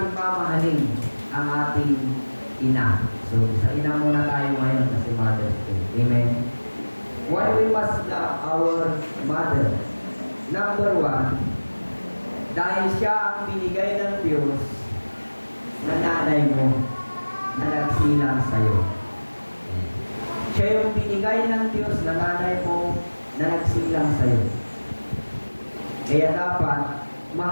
mamahalin ang ating ina? So, sa ina muna tayo ngayon kasi Mother's Day. Amen? Why we must love our mother? Number one, dahil siya ang binigay ng Diyos na nanay mo na nagsilang sa'yo. Siya yung binigay ng Diyos na nanay mo na nagsilang sa'yo. Kaya dapat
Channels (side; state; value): both; inverted; correlation -1.00